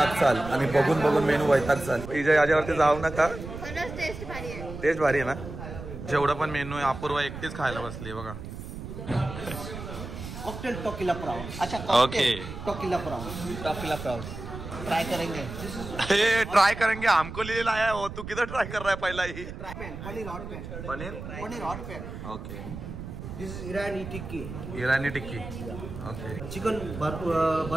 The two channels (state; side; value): noise; right; rumble, 10 dB below the sound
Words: चाल आणि बघून बघून मेनू वैताग चाल. इथे याच्यावरती जाऊ नका, टेस्ट भारी आहे ना. जेवढा पण मेनू आहे अपूर्वा एकटीच खायला बसली बघा. Cocktail tequila prawn. अच्छा ओके टोकिला प्राउन ट्राई करेंगे. हे ट्राई करेंगे हमको लिहिलेला आहे हो. तू किधर ट्राई कर रहा है पहिला ही? Paneer hot pan. Okay. This is Irani tikki. Okay. Chicken